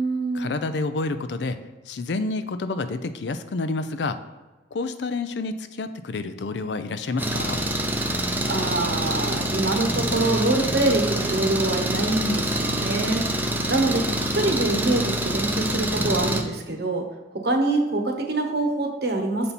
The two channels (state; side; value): normal; both; correlation 0.37